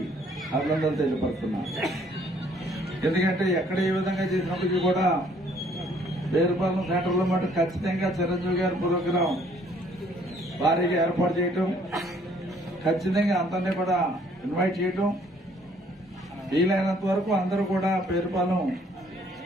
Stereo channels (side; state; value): both; normal; correlation 0.62